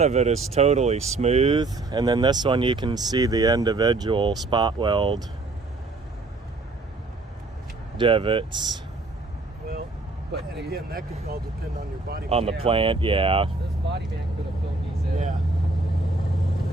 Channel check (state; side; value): quieter; left; 3.3 dB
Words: of it is totally smooth, and then this one you can see the individual spot weld divots Well, But and again, that could all depend on your body. on the Yeah. plant. Yeah. this body man could have filled these in. Yeah.